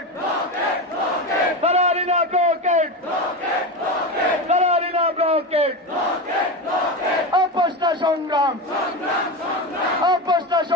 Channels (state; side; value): normal; both; correlation 0.20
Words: দালালি না ব্লকেট, দালালি না ব্লকেট। আপোষ না সংগ্রাম, আপোষ না